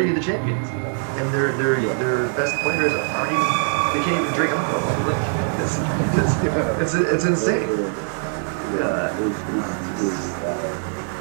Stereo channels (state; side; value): silent; left; 60 dB below the other